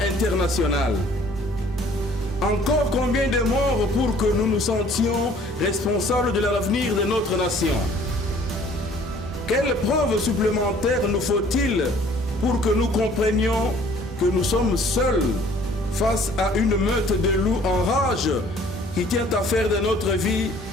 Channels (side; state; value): both; normal; correlation 0.55